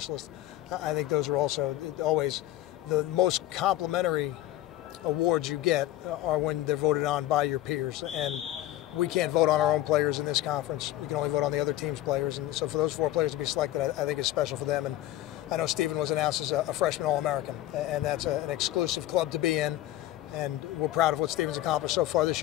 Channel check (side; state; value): right; quieter; 14.5 dB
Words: I think those are also always the most complimentary awards you get are when they're voted on by your peers. And we can't vote on our own players in this conference. We can only vote on the other team's players. And so for those four players to be selected, I think is special for them. And I know Stephen was announced as a freshman All-American, and that's an exclusive club to be in. And we're proud of what Stephen's accomplished so far this